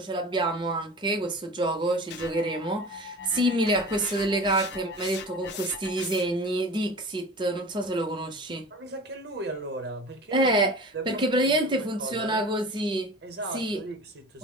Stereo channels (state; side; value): normal; both; correlation 0.37